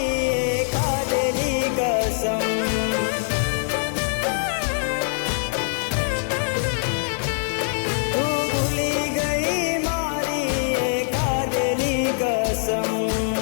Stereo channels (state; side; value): silent; right; 60 dB below the other